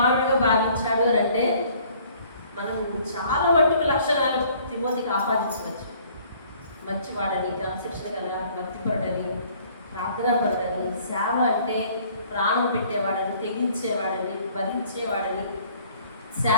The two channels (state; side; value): inverted; both; correlation -0.57